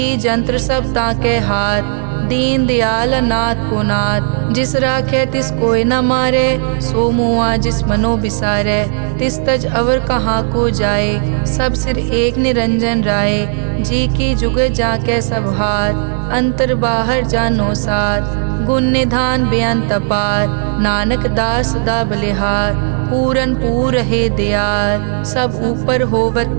जंत्र सब ताके हाथ, दीन दयाल अनाथ को नाथ। जिस राखे तिस कोई न मारे, सो मुआ जिस मनो बिसारे। तिस तज अवर कहाँ को जाए, सब सिर एक निरंजन राय। जी की जुग जाके सब हाथ, अंतर बाहर जानो साथ। गुण निधान बेअंत अपार, नानक दास सदा बलिहार। पूरन पूर है दयाल, सब ऊपर होवत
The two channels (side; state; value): left; silent; 68 dB below the other